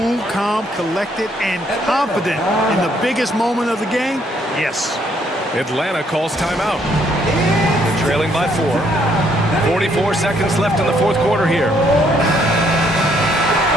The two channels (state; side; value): normal; both; correlation 0.69